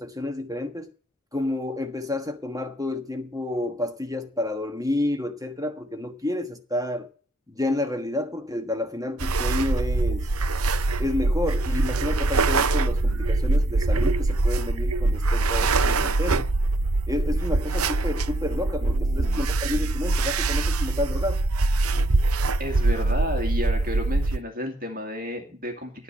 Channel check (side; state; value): both; normal; correlation 0.72